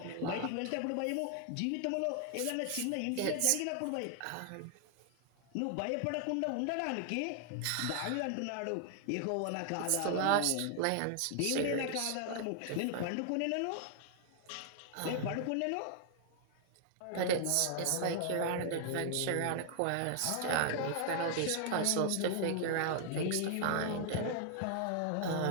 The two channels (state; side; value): different; both; correlation 0.00